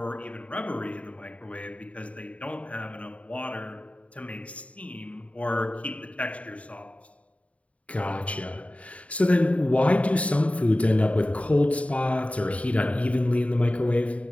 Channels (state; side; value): late; right; 0.066 ms